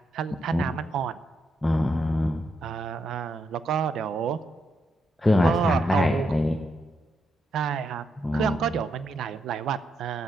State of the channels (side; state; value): both; normal; correlation 0.81